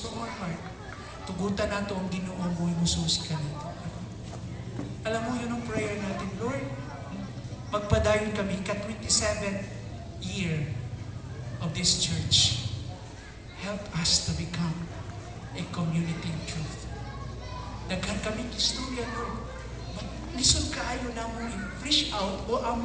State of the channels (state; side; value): identical; both; correlation 1.00